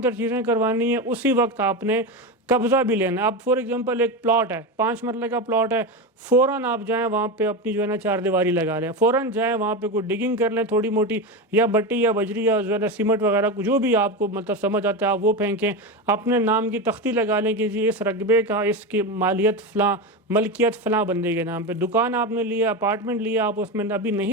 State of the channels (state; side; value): normal; both; correlation 0.18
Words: تر چیزیں کروانی ہیں اسی وقت آپ نے قبضہ بھی لینا ہے۔ اب فور ایگزامپل ایک پلاٹ ہے، 5 مرلے کا پلاٹ ہے، فوراً آپ جائیں وہاں پہ اپنی جو ہے نا 4 دیواری لگا لیں، فوراً جائیں وہاں پہ کوئی ڈگنگ کر لیں تھوڑی موٹی، یا بٹی یا بجری یا جو ہے نا سیمنٹ وغیرہ جو بھی آپ کو مطلب سمجھ آتا ہے آپ وہ پھینکیں، اپنے نام کی تختی لگا لیں کہ جی اس رقبے کا، اس کی ملکیت فلاں بندے کے نام پہ۔ دکان آپ نے لیا، اپارٹمنٹ لیا، آپ اس میں ابھی